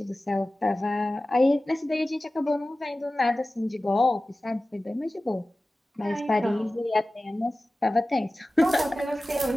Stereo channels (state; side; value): normal; both; correlation 0.96